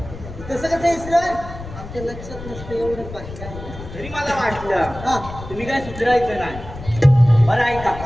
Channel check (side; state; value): left; noise; rumble, 12 dB below the sound